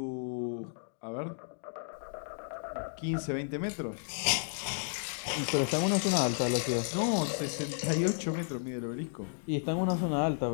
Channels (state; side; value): silent; right; digital silence